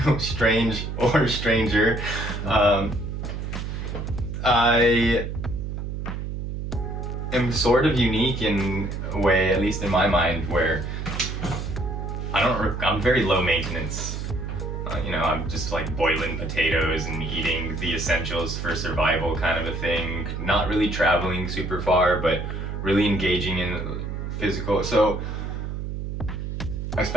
stranger. I am sort of unique in a way, at least in my mind, where I'm very low maintenance. I'm just like boiling potatoes and eating the essentials for survival kind of a thing. Not really traveling super far, but really engaging in physical. So I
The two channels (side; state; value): right; noise; hum, 5 dB below the sound